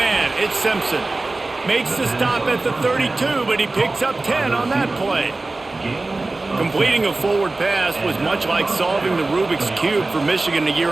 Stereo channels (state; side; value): quieter; left; 3.2 dB